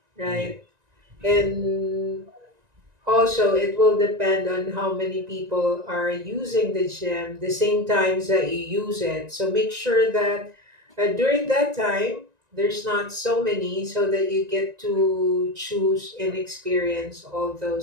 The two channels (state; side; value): late; left; 1.9 ms